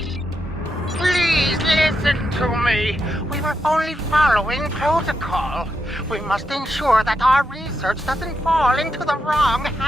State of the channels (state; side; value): normal; both; correlation 0.84